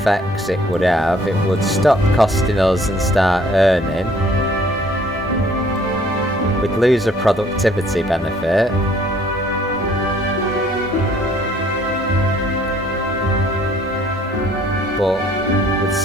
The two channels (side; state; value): both; normal; correlation 0.59